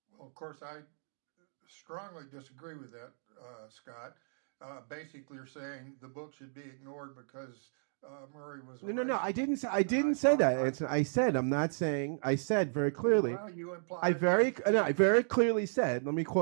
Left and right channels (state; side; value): silent; left; digital silence